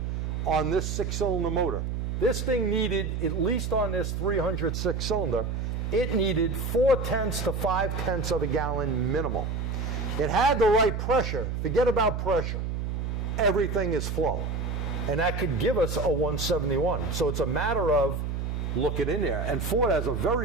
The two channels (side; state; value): right; noise; hum, 2 dB below the sound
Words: on this 6-cylinder motor. This thing needed, at least on this 306 cylinder, it needed 0.4 to 0.5 of a gallon minimal. It had the right pressure. Forget about pressure. Everything is flow. And that could give us a 171. So it's a matter of looking in there. And Ford has a